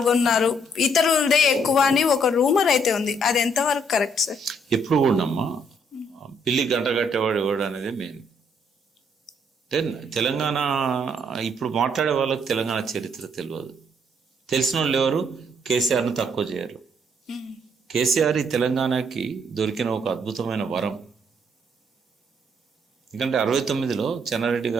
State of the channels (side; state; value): both; normal; correlation 0.69